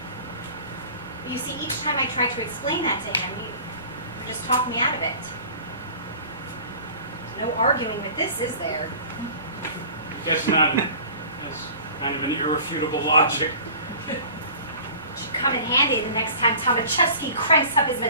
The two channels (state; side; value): inverted; both; correlation -0.44